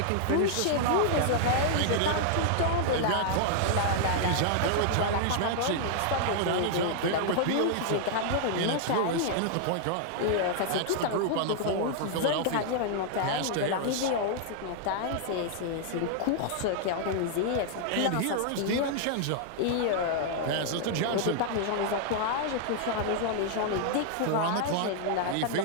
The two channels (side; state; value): both; different; correlation -0.01